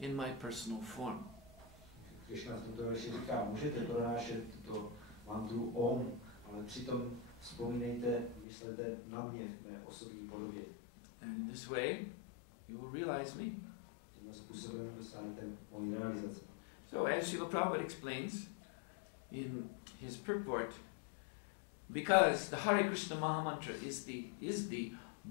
my personal form. Krishna v tomto verši říká, můžete pronášet tuto mantru Om, ale přitom Vzpomínejte, myslete na mě v mé osobní podobě. And in this way, you will realize me. Tímto způsobem dosáhnete mojí realizace. So as Srila Prabhupada explains in his purport, because the Hare Krishna Maha Mantra is the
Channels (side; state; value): right; drops out; at 8.5 s